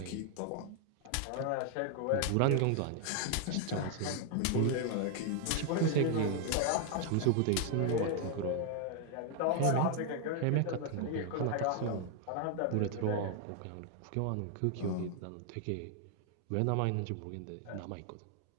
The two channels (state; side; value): different; both; correlation 0.00